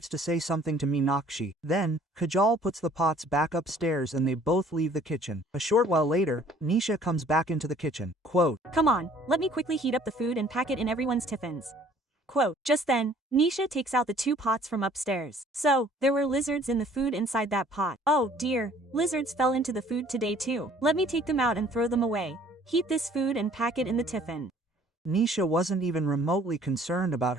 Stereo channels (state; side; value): normal; both; correlation 0.56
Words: to say something to Meenakshi. Then, Kajal puts the pots back upstairs and they both leave the kitchen. A short while later, Nisha comes back into the kitchen. Quote, Come on, let me quickly heat up the food and pack it in everyone's tiffins. Quote, Just then, Nisha takes out the 2 pots from upstairs. So, there were lizards in the food inside that pot. Oh dear, lizards fell into the food today too. Let me take them out and throw them away. Heat this food and pack it in the tiffin. Nisha wasn't even remotely concerned about